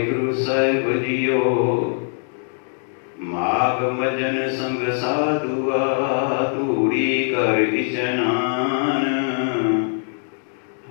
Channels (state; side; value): silent; right; digital silence